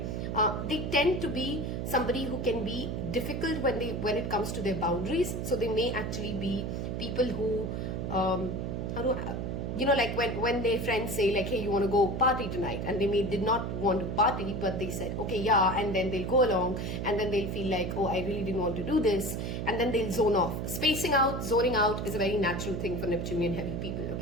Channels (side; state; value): right; noise; hum, 3 dB below the sound